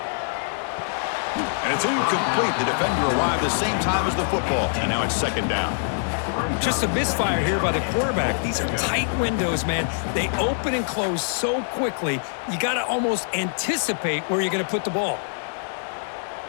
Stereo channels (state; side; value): silent; right; digital silence